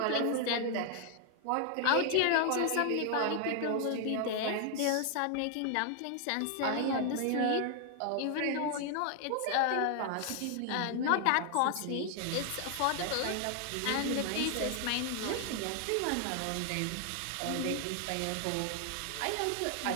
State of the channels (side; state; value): both; different; correlation 0.00